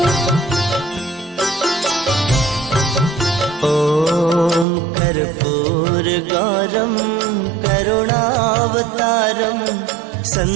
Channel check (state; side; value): drops out; left; at 4.7 s